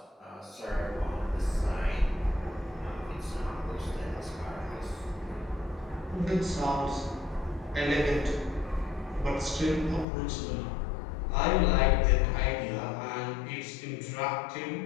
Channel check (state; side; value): drops out; right; at 10.1 s